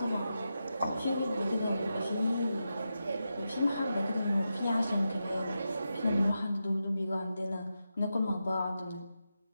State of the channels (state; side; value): inverted; both; correlation -0.89